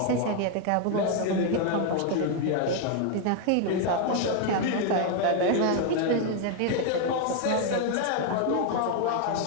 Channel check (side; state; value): both; different; correlation 0.00